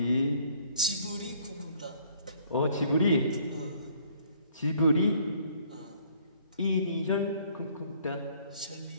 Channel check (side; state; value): both; inverted; correlation -0.61